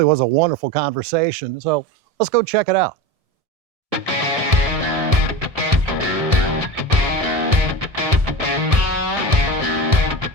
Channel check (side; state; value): left; late; 1.7 ms